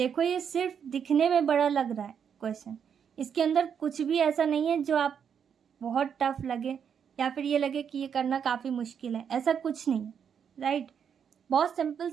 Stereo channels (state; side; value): quieter; left; 7.6 dB